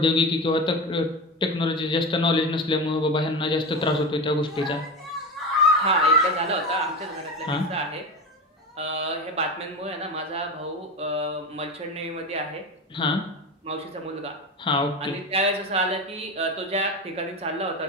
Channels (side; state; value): both; normal; correlation 0.23